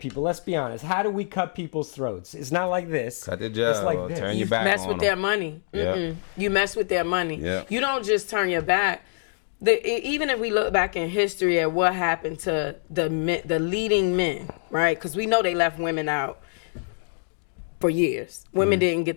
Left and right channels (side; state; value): right; silent; digital silence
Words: people, let's be honest. How do we cut people's throats? It's not like this. Cut their jaw, It's like this. turn You your back mess on with them. their money. Yeah. You mess with their money. Yeah. You don't just turn your back. Even if we look back in history at what happened to the leading men, right? Because we know they left women out for years. Women didn't get